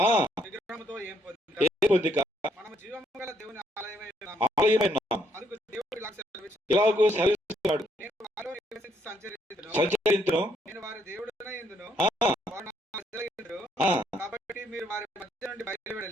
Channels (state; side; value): normal; both; correlation 0.72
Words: విగ్రహముతో ఏం పొందిక మనము జీవము గల దేవుని ఆలయమై అందుకు దేవుడు ఇలాగూ సెలవిస్తున్నాడు. నేను వారిలో నివసించి సంచరించును, నేను వారి దేవుడనై యుందును, వారు నా ప్రజలై యుందురు. కాబట్టి మీరు వారి మధ్య నుండి